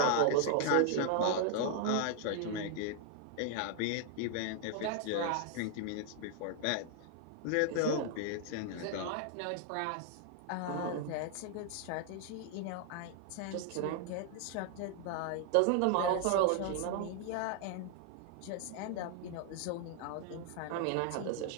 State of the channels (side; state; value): both; different; correlation 0.00